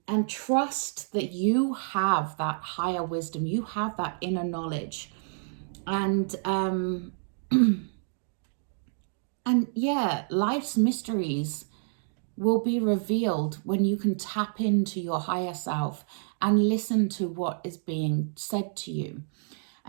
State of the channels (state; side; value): silent; left; digital silence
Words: trust that you have that higher wisdom, you have that inner knowledge, and and yeah, life's mysteries will be revealed when you can tap into your higher self and listen to what is being said to you.